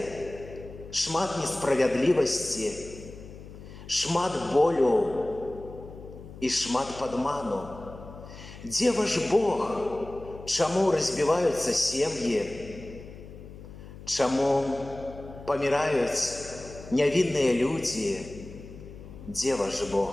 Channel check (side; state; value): left; noise; hum, 15 dB below the sound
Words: шмат несправядлівасці, шмат болю і шмат падману? Дзе ваш Бог? Чаму разбіваюцца сем'і? Чаму паміраюць нявінныя людзі? Дзе ваш